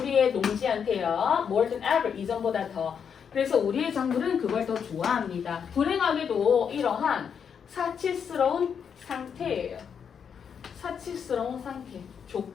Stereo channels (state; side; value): quieter; right; 7.2 dB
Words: 농지한테요. more than ever, 이전보다 더. 그래서 우리의 작물은 그걸 더 좋아합니다. 불행하게도 이러한 사치스러운 상태예요. 사치스러운 상태,